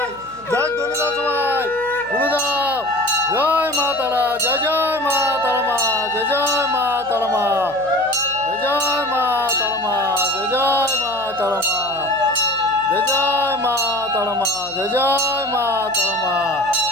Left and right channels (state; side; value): noise; left; hum, 24 dB below the sound